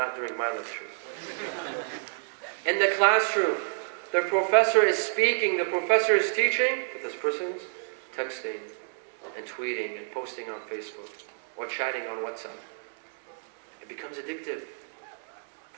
during my lectures. In the classroom, the professor is speaking, the professor is teaching, but this person's texting and tweeting and posting on Facebook or chatting on WhatsApp. It becomes addictive.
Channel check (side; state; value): left; silent; digital silence